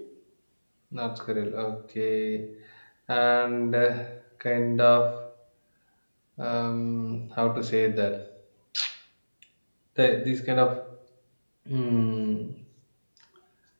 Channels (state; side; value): inverted; both; correlation -1.00